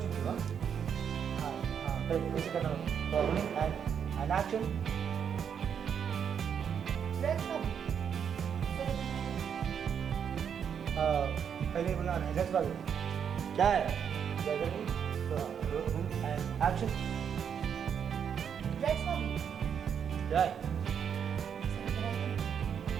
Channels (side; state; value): left; quieter; 7.7 dB